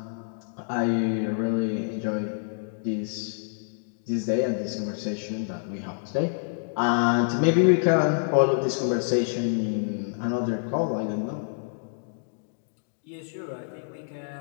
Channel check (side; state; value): right; silent; digital silence